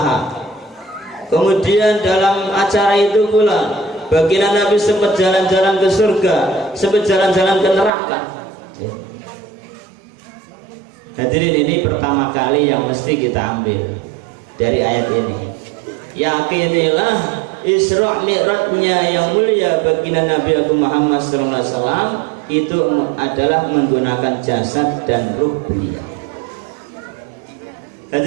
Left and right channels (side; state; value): left; drops out; at 7.9 s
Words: Kemudian dalam acara itu pula baginda Nabi sempat jalan-jalan ke surga, sempat jalan-jalan ke neraka. Hadirin, ini pertama kali yang mesti kita ambil dari ayat ini. Yakinilah Isra Mi'rajnya yang mulia baginda Nabi Muhammad SAW itu adalah menggunakan jasad dan ruh beliau.